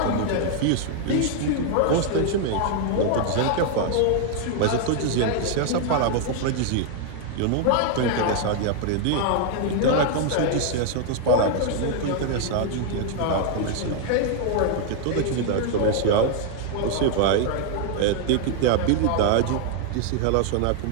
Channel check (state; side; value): different; both; correlation 0.00